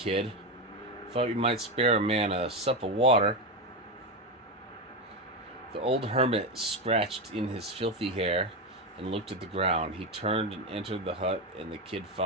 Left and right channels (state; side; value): normal; both; correlation 0.12